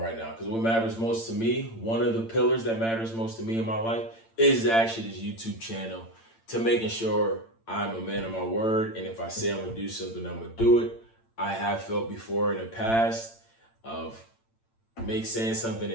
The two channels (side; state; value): right; late; 8.8 ms